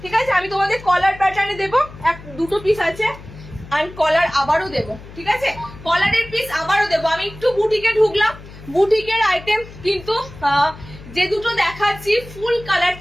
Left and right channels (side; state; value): left; noise; hum, 17 dB below the sound